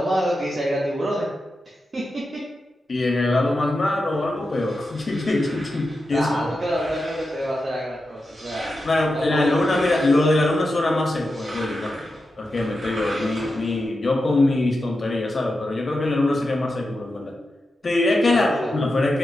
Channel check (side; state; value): both; normal; correlation 0.90